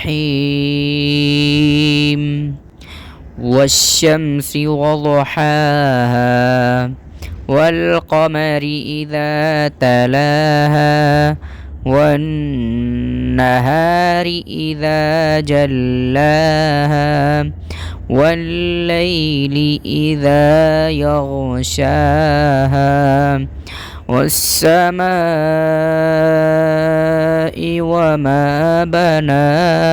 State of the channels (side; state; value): both; identical; correlation 1.00